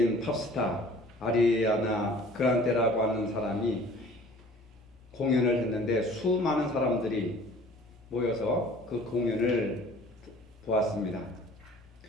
팝스타 아리아나 그란데라고 하는 사람이 공연을 했는데 수많은 사람들이 모여서 그 공연을 보았습니다.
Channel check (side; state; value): both; normal; correlation 0.49